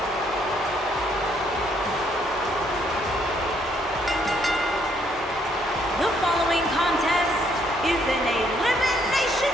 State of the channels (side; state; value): both; normal; correlation 0.69